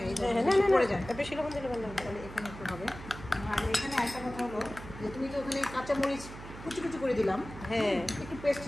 বেশি লবণ দিলে ভালো তাহলে এখানে একটু হবে। আর এখানে একটা কথা হলো যে তুমি তো ওখানে কাঁচামরিচ কুচি করে দিলাম। হ্যাঁ, একটু পেস্ট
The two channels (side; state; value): right; noise; hum, 13 dB below the sound